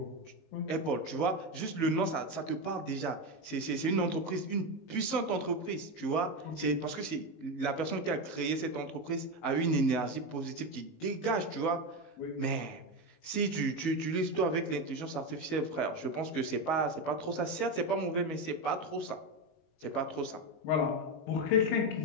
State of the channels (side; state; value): right; late; 19 ms